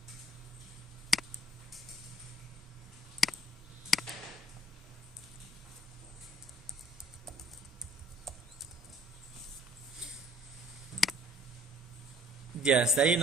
Ya, hasta ahí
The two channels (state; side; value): normal; both; correlation 0.57